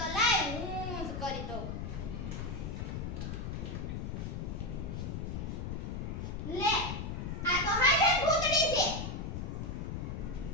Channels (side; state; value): left; noise; rumble, 4 dB below the sound